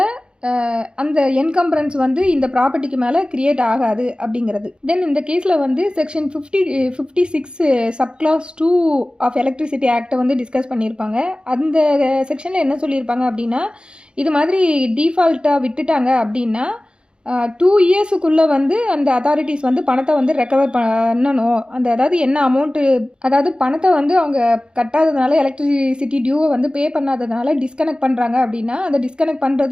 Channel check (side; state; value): left; late; 0.052 ms